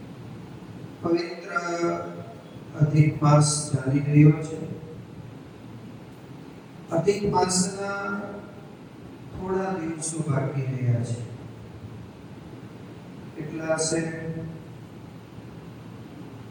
પવિત્ર અધિક માસ ચાલી રહ્યો છે। અધિક માસના થોડા દિવસો બાકી રહ્યા છે। કેટલા છે?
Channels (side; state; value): both; identical; correlation 1.00